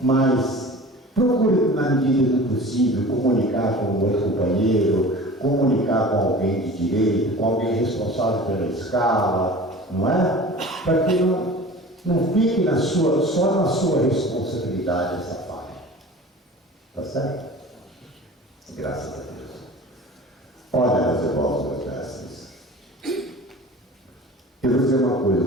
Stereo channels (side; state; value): both; normal; correlation 0.40